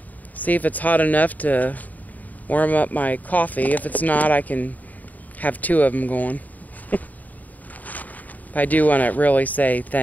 see if it's hot enough to warm up my coffee. If it's not, I can have two of them going. I do want to really say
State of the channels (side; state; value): right; late; 0.078 ms